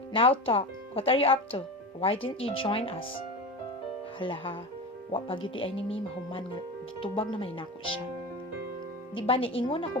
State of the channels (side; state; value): both; normal; correlation 0.26